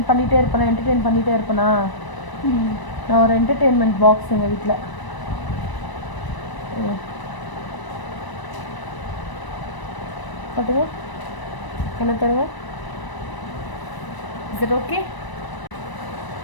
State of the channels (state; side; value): late; right; 1.0 ms